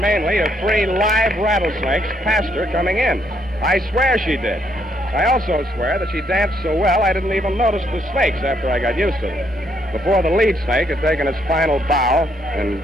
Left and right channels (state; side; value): normal; both; correlation 0.72